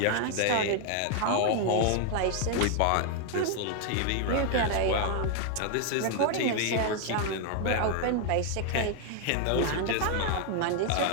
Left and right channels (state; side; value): different; both; correlation 0.00